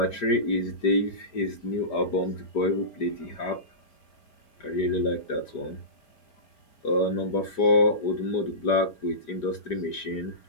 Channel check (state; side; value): late; right; 5.0 ms